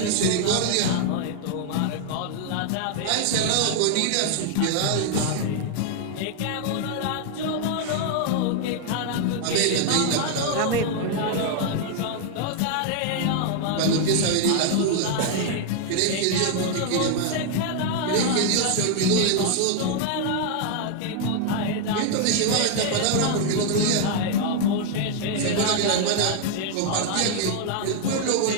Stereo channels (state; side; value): different; both; correlation 0.00